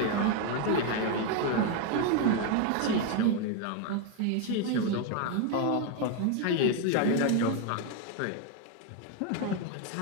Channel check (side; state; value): both; different; correlation 0.01